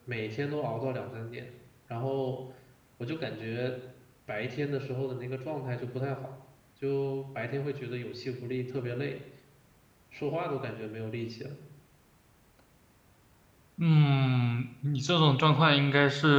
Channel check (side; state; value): both; identical; correlation 1.00